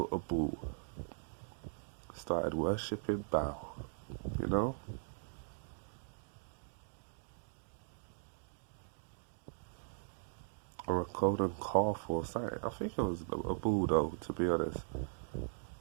a bull. Started worshipping Baal, you know? Or a golden calf or something. I think it was a bull though, to be honest.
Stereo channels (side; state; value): left; silent; digital silence